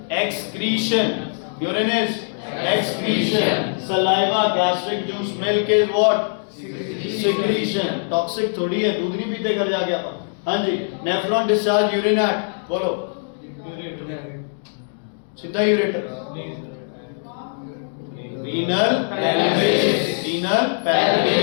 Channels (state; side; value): silent; right; digital silence